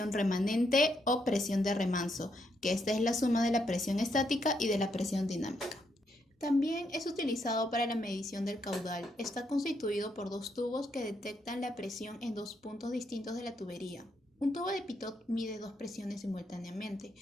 remanente o presión de remanso, que esta es la suma de la presión estática y de la presión dinámica. También es utilizado para la medición del caudal. Está constituido por dos tubos que detectan la presión en dos puntos distintos de la tubería. Un tubo de Pitot mide dos presiones simultáneamente,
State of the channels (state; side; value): normal; both; correlation 0.77